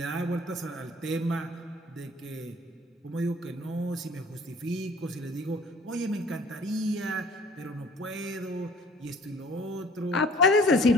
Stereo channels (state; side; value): normal; both; correlation 0.52